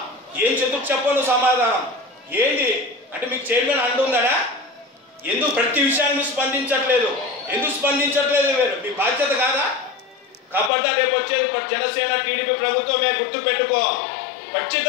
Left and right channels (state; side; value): drops out; right; at 10.7 s